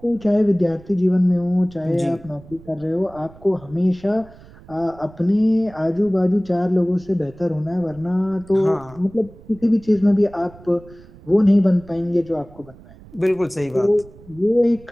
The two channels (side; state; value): right; noise; rumble, 22 dB below the sound